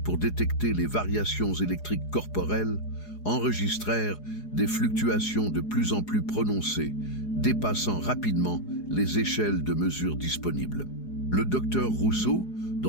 détecter les variations électriques corporelles enregistrèrent des fluctuations de plus en plus prononcées, dépassant rapidement les échelles de mesure disponibles. Le docteur Rousseau,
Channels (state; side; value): late; right; 4.8 ms